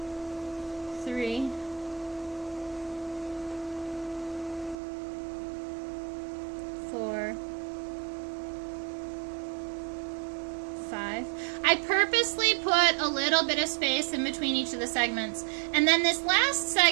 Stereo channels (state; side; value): drops out; left; at 4.8 s